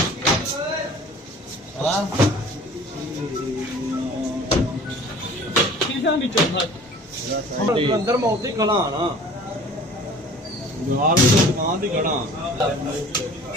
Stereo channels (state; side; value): normal; both; correlation 0.46